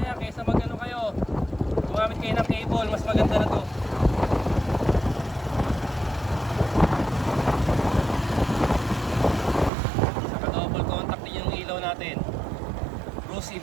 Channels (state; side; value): drops out; left; at 9.7 s